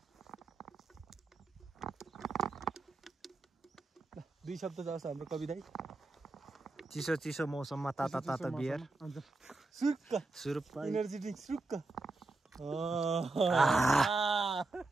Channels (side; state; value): left; quieter; 3.3 dB